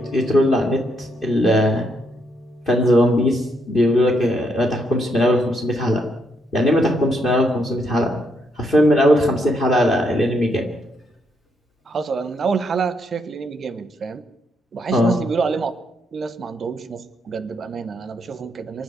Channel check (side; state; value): both; normal; correlation 0.76